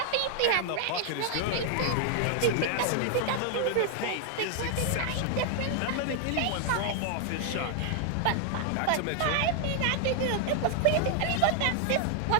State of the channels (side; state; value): both; different; correlation 0.00